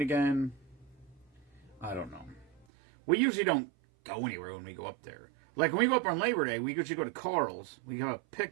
again. I don't know. We usually don't go anywhere when we go up there. Like when we go up on Labor Day, we usually go to Carl's. We have a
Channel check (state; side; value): drops out; left; at 2.7 s